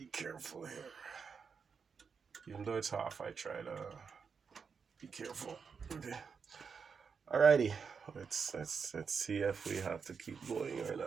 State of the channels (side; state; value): left; quieter; 5.9 dB